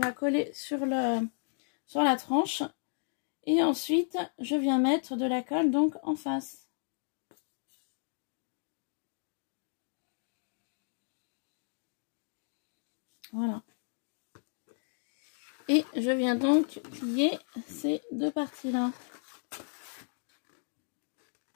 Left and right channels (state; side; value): silent; right; digital silence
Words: va coller sur la tranche. Et ensuite, je viens mettre de la colle donc en face. Voilà. Et je viens donc plier ces deux parties-là.